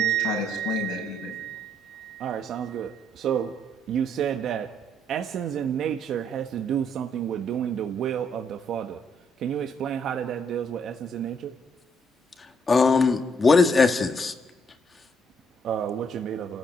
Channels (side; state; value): both; normal; correlation 0.70